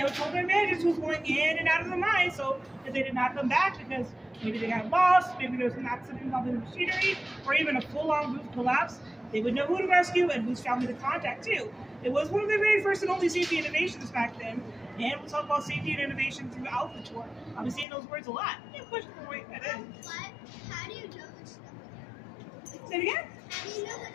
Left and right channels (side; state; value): right; drops out; at 17.9 s